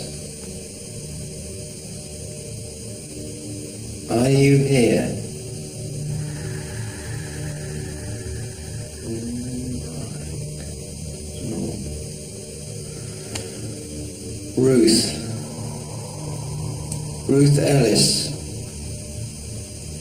Are you here? Ruth. Ruth Ellis.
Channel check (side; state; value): both; identical; correlation 1.00